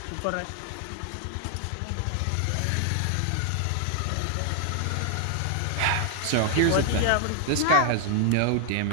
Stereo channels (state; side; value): different; both; correlation 0.00